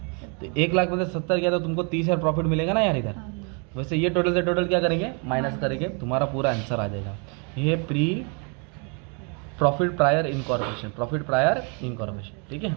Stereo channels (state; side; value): quieter; left; 36.3 dB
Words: तो 1 लाख में से 70 गया तो तुमको 30,000 प्रॉफिट मिलेगा ना यार इधर। वैसे ये टोटल से टोटल क्या करेंगे, माइनस करेंगे, तुम्हारा पूरा आंसर आ जाएगा। ये pre profit prior incorporation, profit prior incorporation, ठीक है।